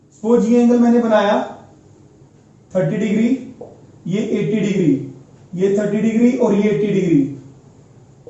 सपोज ये एंगल मैंने बनाया 30 डिग्री, ये 80 डिग्री, ये 30 डिग्री और ये 80 डिग्री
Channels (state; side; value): identical; both; correlation 1.00